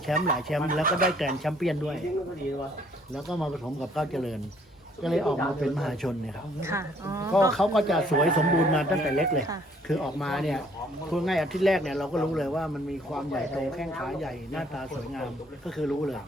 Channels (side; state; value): both; normal; correlation 0.62